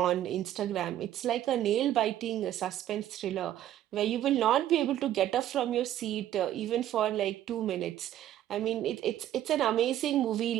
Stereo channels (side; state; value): left; quieter; 12.3 dB